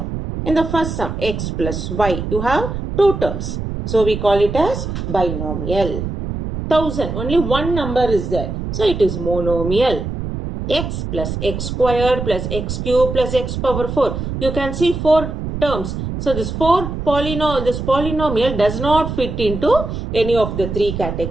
In the first sum, x plus y, you have two terms. So we call it as binomial. 1000, only one number is there. So it is monomial. X plus x squared plus x cube plus x power 4. You can see four terms. So this polynomial does not fit into any of the three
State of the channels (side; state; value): right; noise; rumble, 5 dB below the sound